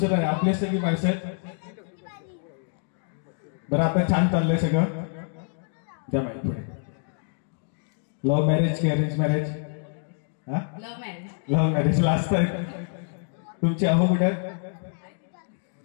नाही, आपले सगळी माणसं आहेत. बरं, आता छान चाललंय सगळं. द्या माईक पुढे. लव्ह मॅरेज की arrange marriage? Love marriage. Love marriage. Last आहे तुमची. अहो कुठे?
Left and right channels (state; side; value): silent; right; 61 dB below the other